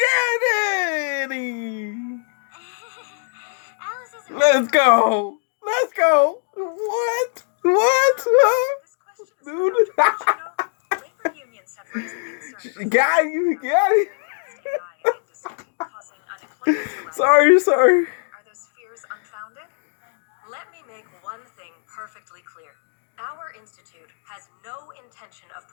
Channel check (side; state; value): right; silent; 64 dB below the other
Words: it! Alice isn't Let's go! Let's go! What? What? This question is Dude. for Dr. Bush, labor unions have raised the concern. Got you, got it. AI industry causing unemployment to rise. Sorry. Are those fears unfounded? Let me make one thing perfectly clear. Our institute has no intention of